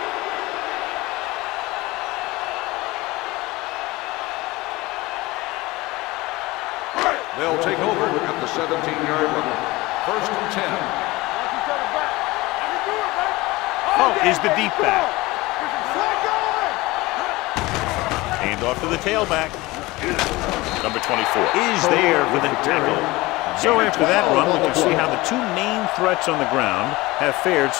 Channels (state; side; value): quieter; right; 20.8 dB